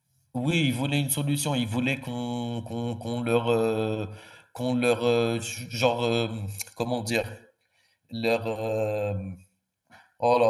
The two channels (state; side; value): identical; both; correlation 1.00